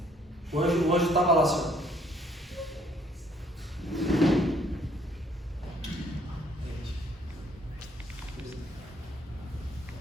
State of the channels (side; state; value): both; normal; correlation 0.64